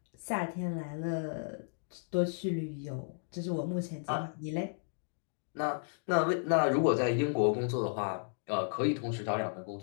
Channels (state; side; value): silent; right; digital silence